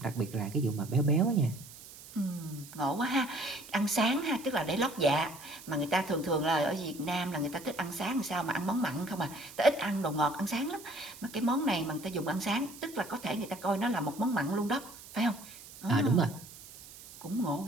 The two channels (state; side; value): noise; right; hiss, 17 dB below the sound